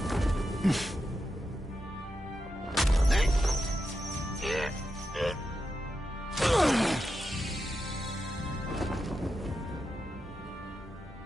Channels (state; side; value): normal; both; correlation 0.88